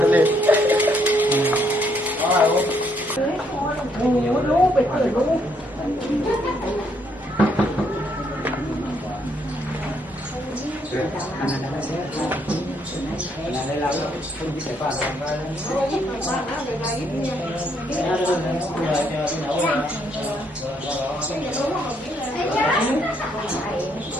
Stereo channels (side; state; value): both; normal; correlation 0.71